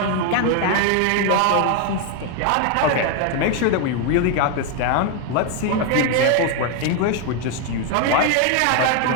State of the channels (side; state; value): both; different; correlation 0.01